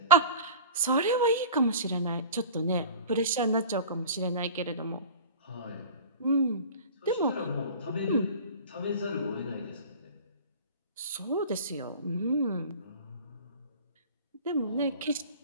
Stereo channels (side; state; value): both; inverted; correlation -0.38